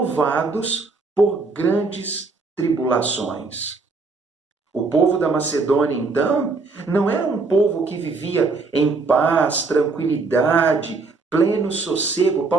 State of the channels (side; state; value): left; quieter; 4.0 dB